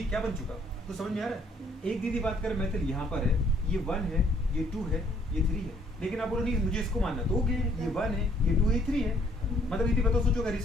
क्या बन चुका? तो समझ में आ रहा है? एक दीदी बात कर मेथड यहाँ पर है, ये 1 है, ये 2 है, ये 3 है। लेकिन आप बोलो नहीं मुझे इसको मानना, तो ओके ये 1 है, ये 2 है, ये 3 है। मतलब दीदी बताओ सोचो अगर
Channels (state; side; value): normal; both; correlation 0.64